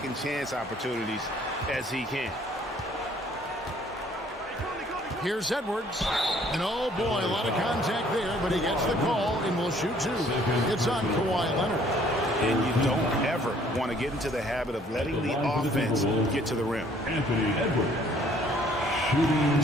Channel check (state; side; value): normal; both; correlation 0.60